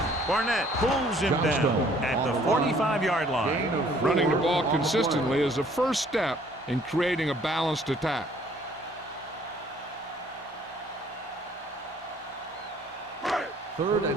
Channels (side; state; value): both; normal; correlation 0.59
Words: Barnett pulls him down at the 45-yard line. Running the ball consistently is the first step in creating a balanced attack. Third